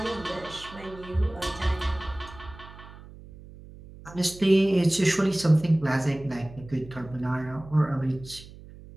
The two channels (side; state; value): right; noise; hum, 18 dB below the sound